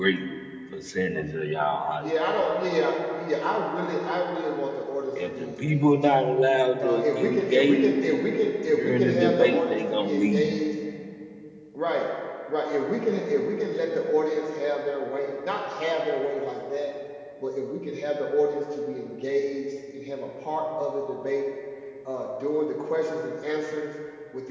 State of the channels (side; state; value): both; identical; correlation 1.00